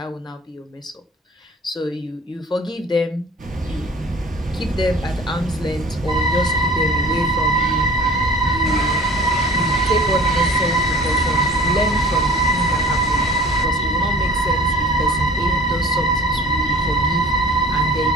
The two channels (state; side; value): normal; both; correlation 0.45